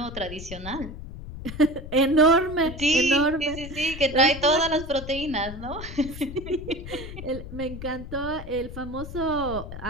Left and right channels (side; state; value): left; noise; rumble, 11 dB below the sound